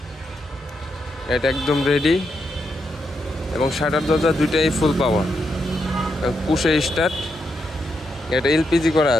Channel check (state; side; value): normal; both; correlation 0.82